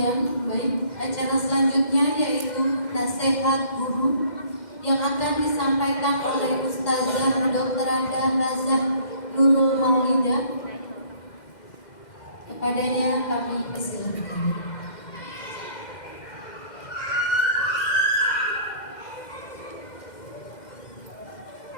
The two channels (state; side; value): late; right; 2.1 ms